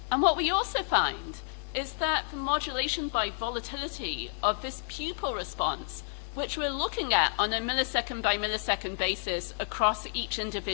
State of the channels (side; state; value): right; silent; digital silence